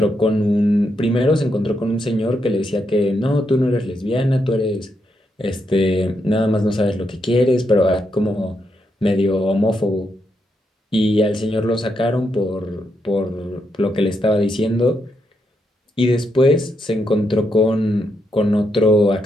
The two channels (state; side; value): normal; both; correlation 0.81